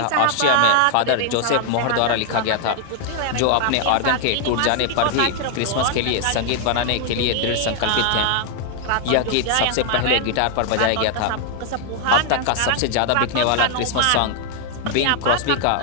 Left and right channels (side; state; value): both; different; correlation 0.00